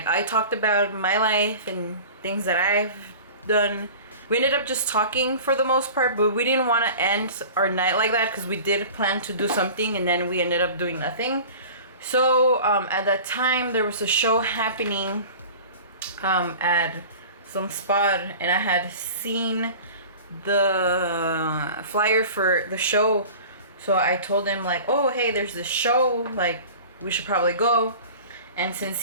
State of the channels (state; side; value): inverted; both; correlation -0.40